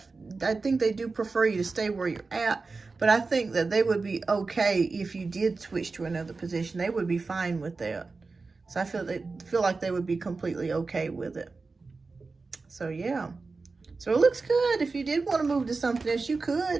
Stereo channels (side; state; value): left; quieter; 4.0 dB